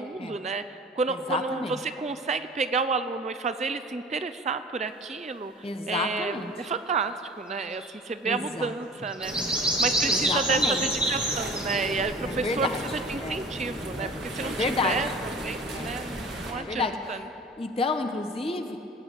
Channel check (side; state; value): both; normal; correlation 0.41